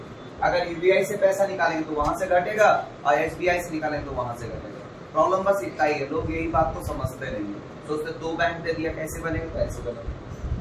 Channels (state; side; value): identical; both; correlation 1.00